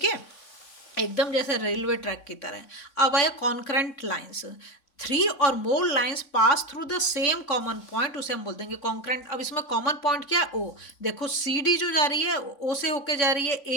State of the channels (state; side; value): late; right; 3.5 ms